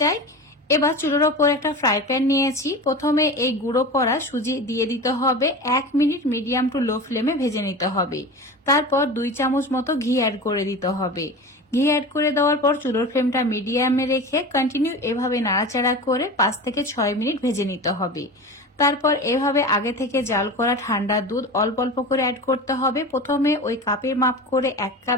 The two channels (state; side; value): normal; both; correlation 0.31